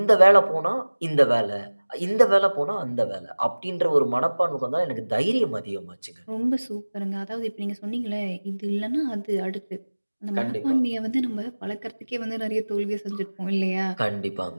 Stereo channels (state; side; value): inverted; both; correlation -1.00